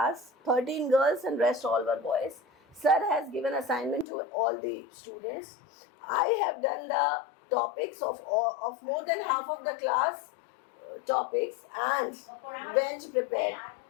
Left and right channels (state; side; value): drops out; right; at 4.0 s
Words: 13 girls and rest all were boys. Sir has given assignment to all the students. I have done the topics of more than half of the class topics and went prepared.